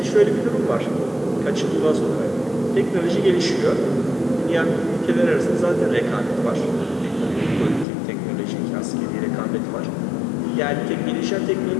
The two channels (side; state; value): right; drops out; at 7.9 s